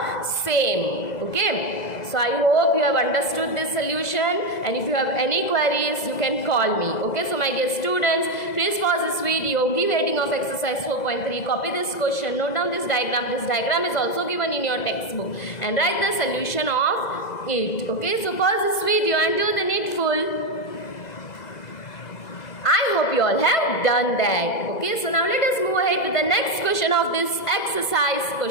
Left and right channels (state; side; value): late; right; 2.0 ms